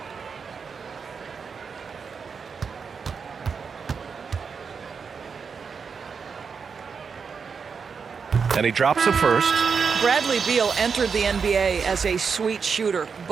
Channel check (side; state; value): left; quieter; 5.8 dB